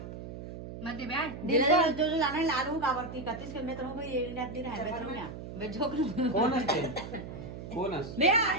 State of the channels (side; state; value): right; noise; hum, 10 dB below the sound